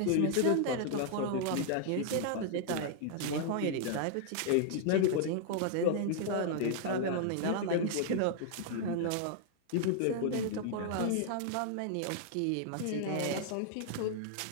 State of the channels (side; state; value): both; different; correlation 0.00